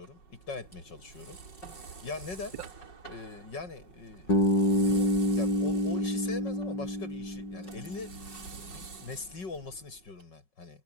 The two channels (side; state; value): right; late; 5.4 ms